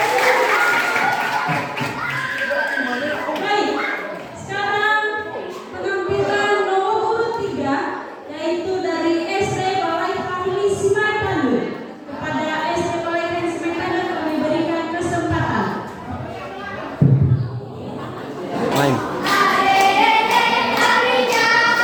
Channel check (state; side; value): identical; both; correlation 1.00